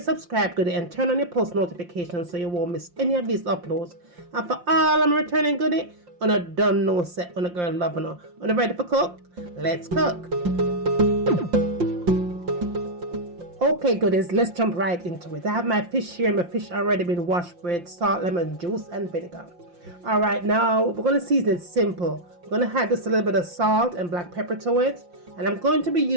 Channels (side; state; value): left; late; 5.7 ms